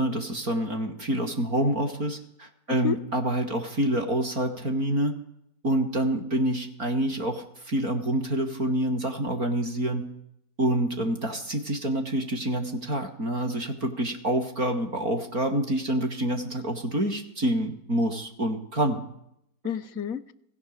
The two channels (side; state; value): left; late; 4.4 ms